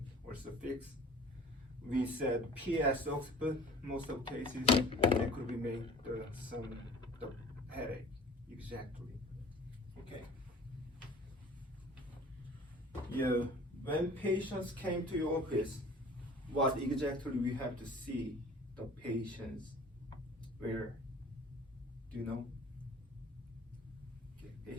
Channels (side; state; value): both; normal; correlation 0.45